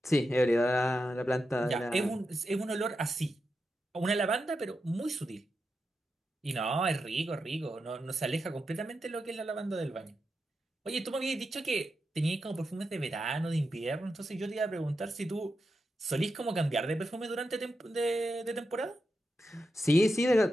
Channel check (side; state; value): both; normal; correlation 0.88